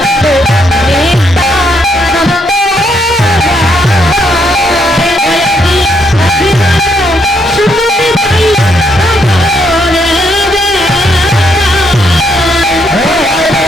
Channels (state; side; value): normal; both; correlation 0.74